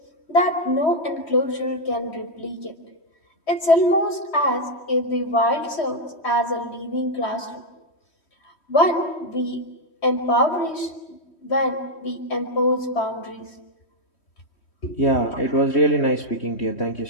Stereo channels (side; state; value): right; late; 3.1 ms